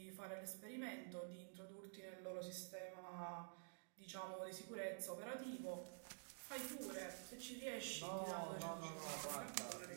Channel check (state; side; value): silent; left; digital silence